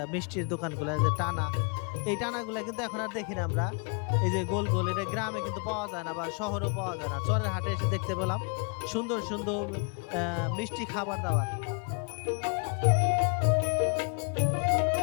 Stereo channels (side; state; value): right; quieter; 39.2 dB